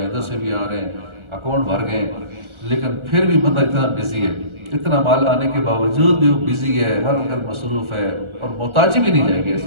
ادھر سے بھی آ رہے ہیں، اکاؤنٹ بھر گئے، لیکن پھر بھی بندہ اتنا بزی ہے، اتنا مال آنے کے باوجود بھی وہ بزی ہے، ہر وقت مصروف ہے، اور محتاجی بھی نہیں جائے گی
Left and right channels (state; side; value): late; left; 1.4 ms